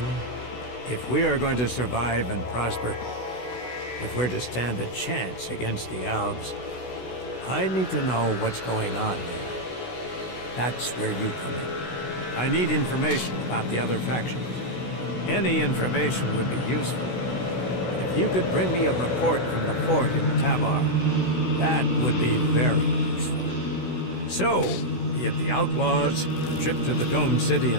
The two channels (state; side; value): late; right; 16 ms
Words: If we are going to survive and prosper, if we're to stand a chance against the Alps, I need to know what's going on there. That's where you come in. I need information about the other factions. Any information would be useful. If you could bring me a report from the fort in Tabar, that would be very useful. So, be it the outlaws, the trip to the Dome City